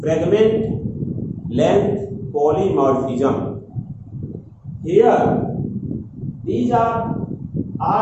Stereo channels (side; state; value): both; identical; correlation 1.00